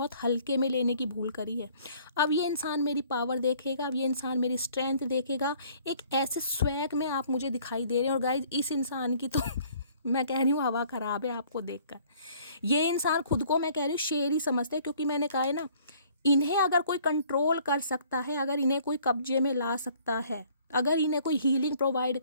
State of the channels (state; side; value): inverted; both; correlation -0.57